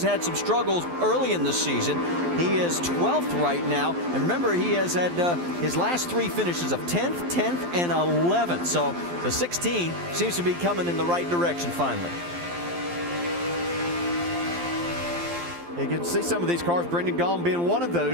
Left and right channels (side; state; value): left; late; 12 ms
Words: had some struggles early in the season. He is 12th right now. And remember, he has had his last 3 finishes of 10th, 10th, and 11th. So the 16 seems to be coming in the right direction finally. You can see some of these cars, Brendan Gaughan being one of